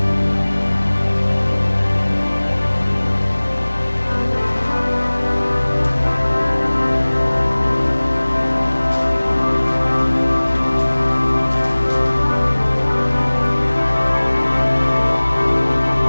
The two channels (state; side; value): inverted; both; correlation -1.00